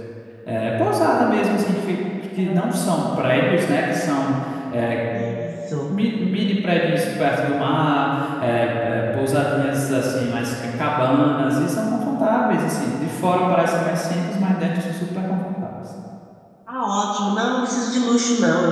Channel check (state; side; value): identical; both; correlation 1.00